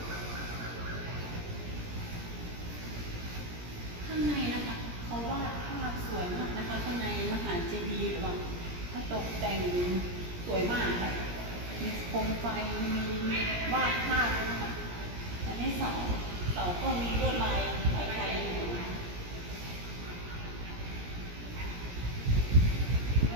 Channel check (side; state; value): left; late; 17 ms